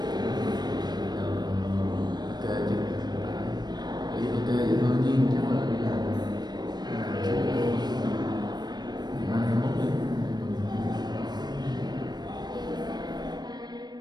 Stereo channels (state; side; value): late; left; 0.20 ms